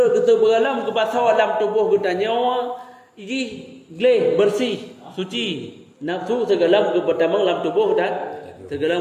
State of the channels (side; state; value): both; identical; correlation 1.00